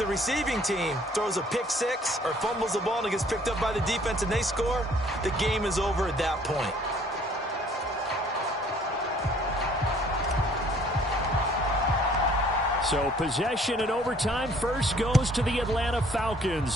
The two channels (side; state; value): both; normal; correlation 0.58